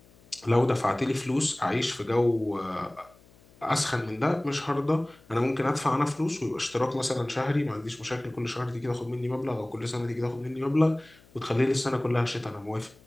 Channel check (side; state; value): left; noise; hum, 27 dB below the sound